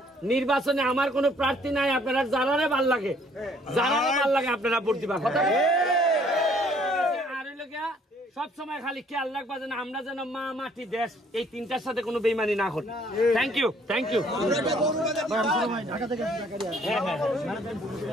নির্বাচনে আমার কোন প্রার্থী নাই আপনারা যারারে ভাল লাগে আপনারা ভোট দিবা কথা আর হইলে গিয়া সব সময় খালি খেয়াল রাখবা যেন আমরা যেন মা মাটি দেশ এই তিনটার সাথে কোনো বেইমানি না করি থ্যাংক ইউ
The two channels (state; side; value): normal; both; correlation 0.62